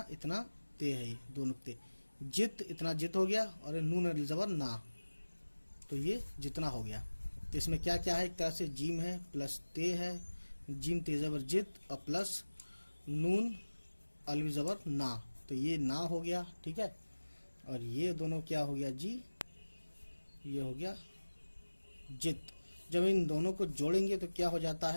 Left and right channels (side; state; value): both; inverted; correlation -1.00